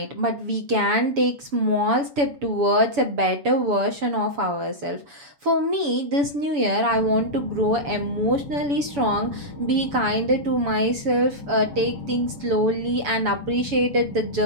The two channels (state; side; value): late; left; 7.0 ms